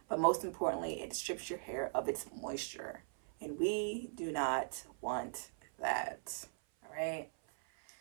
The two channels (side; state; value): left; silent; 51 dB below the other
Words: but most importantly, it strips your hair of its moisture. And we do not want that. All right.